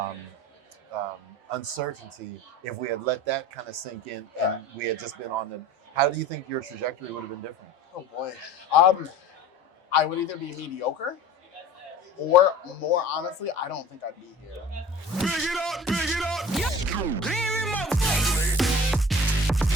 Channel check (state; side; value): normal; both; correlation 0.40